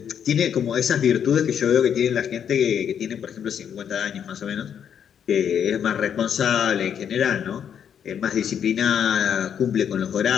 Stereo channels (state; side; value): quieter; right; 8.4 dB